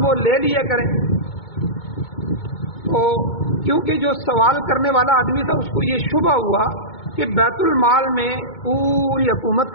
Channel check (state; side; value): late; right; 2.2 ms